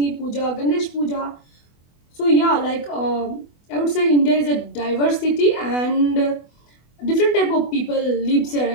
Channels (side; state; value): right; late; 24 ms